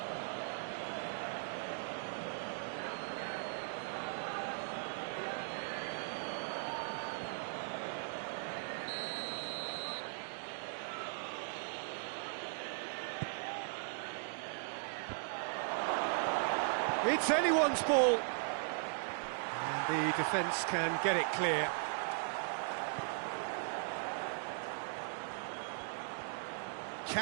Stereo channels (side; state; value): left; silent; digital silence